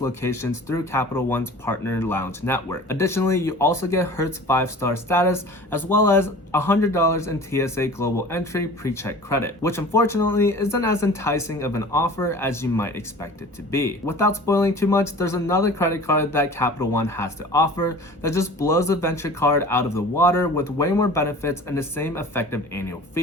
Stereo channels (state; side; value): normal; both; correlation 0.42